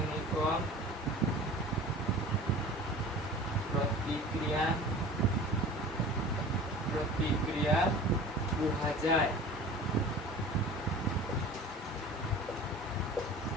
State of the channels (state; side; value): normal; both; correlation 0.40